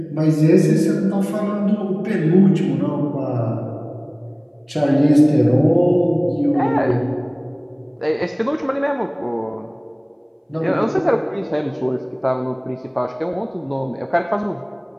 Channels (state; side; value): identical; both; correlation 1.00